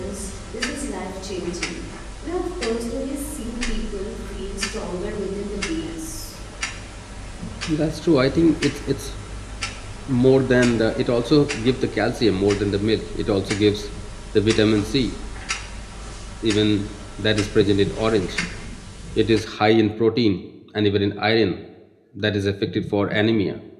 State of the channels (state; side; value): identical; both; correlation 1.00